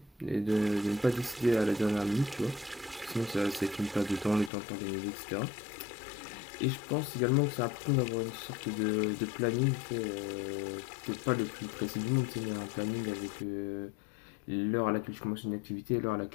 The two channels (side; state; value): right; drops out; at 4.5 s